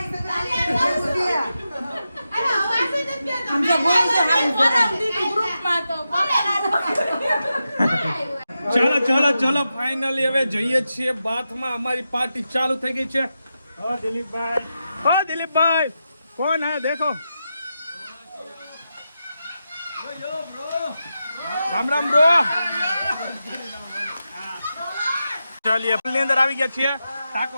ચલો ફાઇનલી હવે જઈએ છીએ બાથમાં. અમારી પાર્ટી ચાલુ થઈ ગઈ છે. દિલીપભાઈ કોણ હે દેખો. રામ રામ બ્રો. ચાલીએ ની અંદર આવી ગયા છીએ. ટાકો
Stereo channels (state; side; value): inverted; both; correlation -0.89